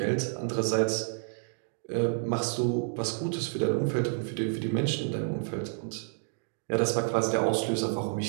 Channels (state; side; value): silent; left; 58 dB below the other